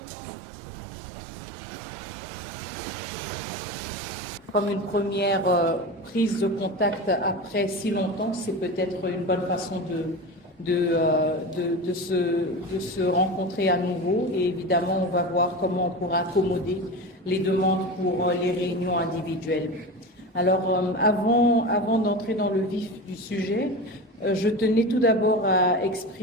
Comme une première prise de contact après si longtemps, c'est peut-être une bonne façon de se rencontrer à nouveau. Et évidemment, on va voir comment on pourra accommoder les demandes pour les réunions individuelles. Alors, avant d'entrer dans le vif du sujet, je tenais tout d'abord à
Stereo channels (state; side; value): normal; both; correlation 0.27